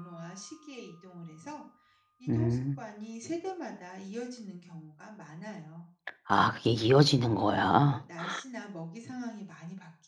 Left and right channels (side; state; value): both; identical; correlation 1.00